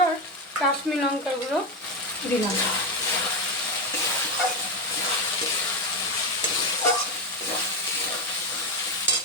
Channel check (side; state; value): both; normal; correlation 0.12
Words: আর কাশ্মীরি লঙ্কার গুঁড়ো দিলাম।